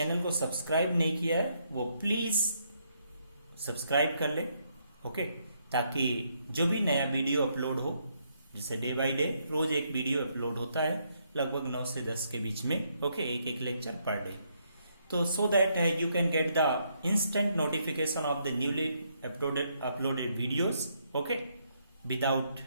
को सब्सक्राइब नहीं किया है वो प्लीज सब्सक्राइब कर ले ओके, ताकि जो भी नया वीडियो अपलोड हो, जैसे डे बाय डे रोज एक वीडियो अपलोड होता है लगभग 9 से 10 के बीच में ओके, एक लेक्चर पर डे, तो so that you can get the instant notification of the newly uploaded videos okay, without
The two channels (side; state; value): both; inverted; correlation -0.74